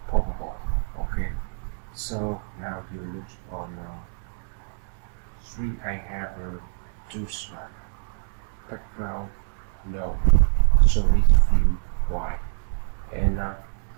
PowerPoint. Okay, so now you look on your screen. I have two slides. Background no, solid view white, and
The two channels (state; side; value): silent; left; 61 dB below the other